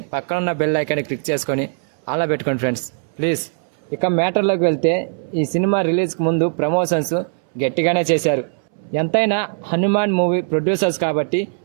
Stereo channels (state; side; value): silent; left; 66 dB below the other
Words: పక్కన ఉన్న బెల్ ఐకాన్ని క్లిక్ చేసుకొని అలా పెట్టుకోండి ఫ్రెండ్స్ ప్లీజ్. ఇక మ్యాటర్లోకి వెళ్తే ఈ సినిమా రిలీజ్కి ముందు ప్రమోషన్స్ గట్టిగానే చేశారు. ఎంతైనా హనుమాన్ మూవీ ప్రొడ్యూసర్స్ కాబట్టి